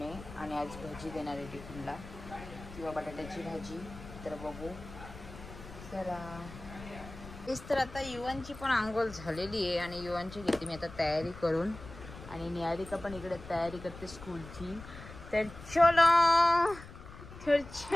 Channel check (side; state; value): left; noise; rumble, 15 dB below the sound